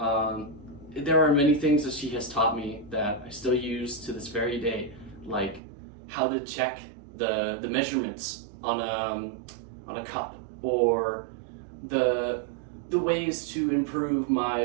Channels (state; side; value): drops out; left; at 5.6 s